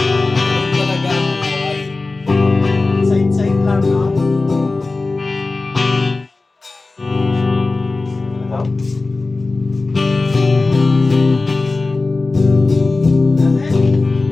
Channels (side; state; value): right; quieter; 3.5 dB